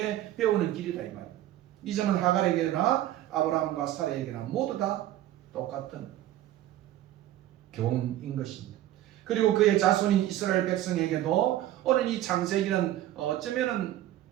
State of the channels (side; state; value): left; quieter; 13.5 dB